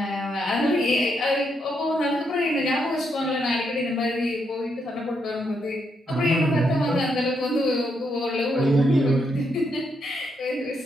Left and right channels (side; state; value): both; normal; correlation 0.79